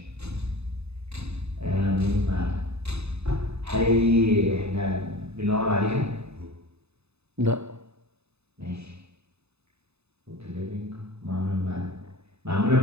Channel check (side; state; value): left; late; 0.79 ms